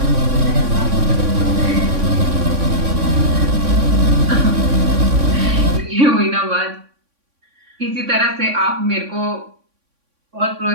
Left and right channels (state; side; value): late; left; 3.6 ms